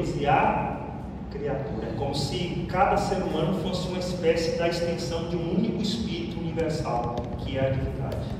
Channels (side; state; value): both; identical; correlation 1.00